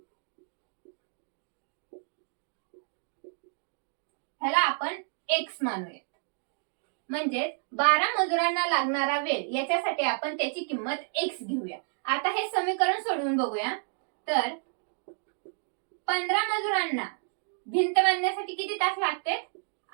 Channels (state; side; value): silent; left; digital silence